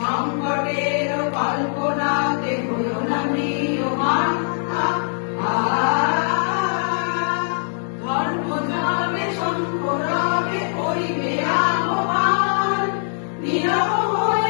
কল্পনাতে হইও না ম্রিয়মাণ ধর্ম যাবে শঙ্করবে করিবে আহ্বান নীরব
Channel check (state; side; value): silent; right; digital silence